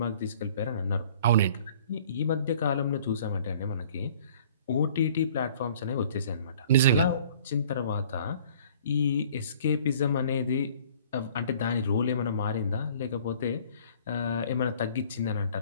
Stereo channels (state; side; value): inverted; both; correlation -0.53